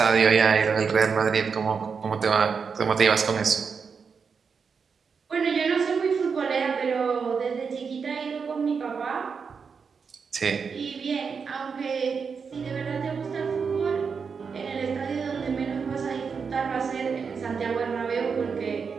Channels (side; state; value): left; quieter; 5.8 dB